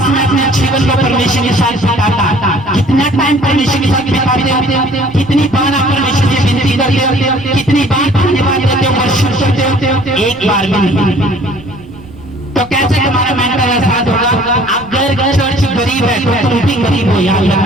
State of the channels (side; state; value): right; noise; rumble, 21 dB below the sound